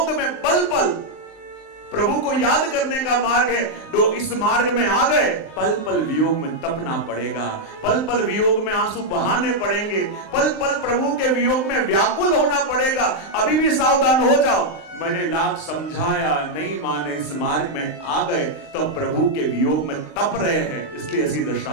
में पल पल प्रभु को याद करने का मार्ग है। तो इस मार्ग में आ गए, पल पल वियोग में तपना पड़ेगा, पल पल वियोग में आंसू बहाने पड़ेंगे, पल पल प्रभु के वियोग में व्याकुल होना पड़ेगा, अभी भी सावधान हो जाओ। मैंने लाख समझाया, नहीं माने, इस मार्ग में आ गए तो प्रभु के वियोग में तप रहे हैं, इसलिए ऐसी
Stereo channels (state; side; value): late; right; 19 ms